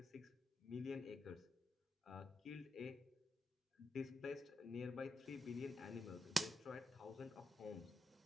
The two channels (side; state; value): both; normal; correlation 0.86